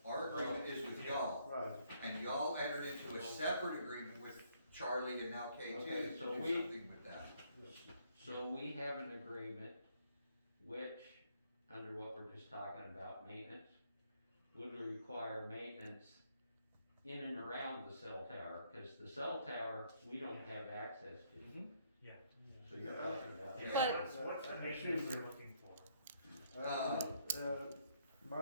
Our agreement is with y'all, Right. and y'all entered into a separate agreement with Charlie and now K2 Okay, to so do we- something with that. So we have an agreement which, under what we're just talking about, maintenance, would require maintenance in and around the cell tower, because the cell tower, we don't have access to. Yeah. So you're talking about. Yeah. But- What's the maintenance they're looking for?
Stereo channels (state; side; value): inverted; both; correlation -0.68